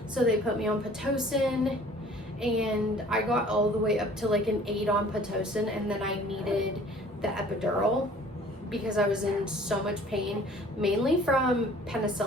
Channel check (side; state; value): both; normal; correlation 0.51